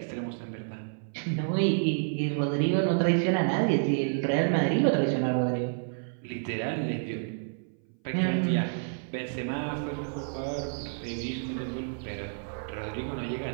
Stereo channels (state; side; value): silent; left; 58 dB below the other